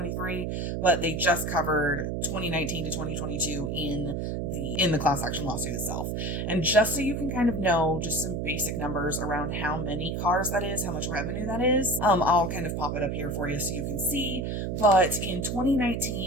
but they just covered 2019 to 2022 in the class action lawsuit itself. And just so you can kind of know just some basic numbers around how many cars that is, how much revenue that is, I'll kind of pop it up here for you so you can see. But in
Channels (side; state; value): right; noise; hum, 2 dB below the sound